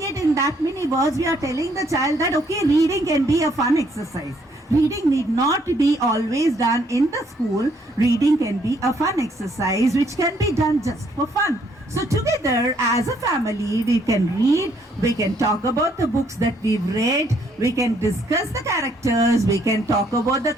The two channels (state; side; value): normal; both; correlation 0.68